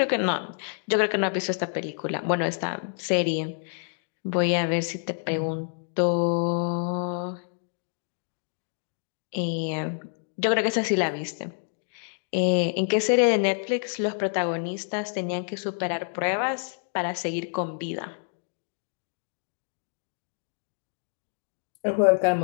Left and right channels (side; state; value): right; silent; digital silence